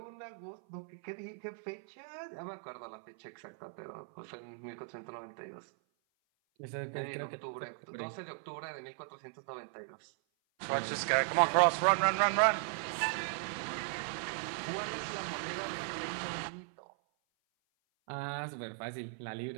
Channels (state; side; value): silent; left; 53 dB below the other